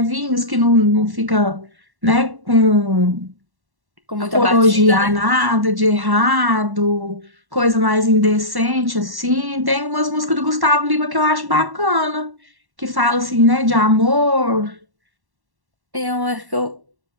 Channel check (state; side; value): late; left; 1.1 ms